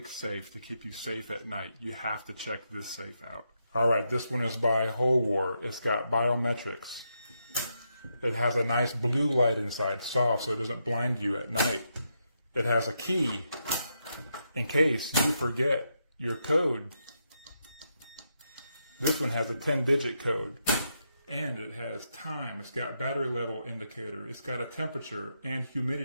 safe to keep you safe at night, you have to check this safe out. All right, this one is by HOLEWOR. It's got biometrics. It has a nice blue light inside, soft, so it doesn't blind you at night. It has a key in case you forget your code. This one has a 10-digit code. And it has time. It's got battery level indicator. It's got a temperature and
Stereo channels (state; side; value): inverted; both; correlation -0.82